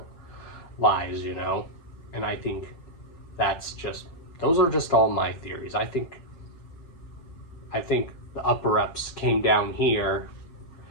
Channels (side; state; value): right; late; 7.2 ms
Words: lies, you know. And I think that's just, those are just all my theories. I think the upper-ups came down here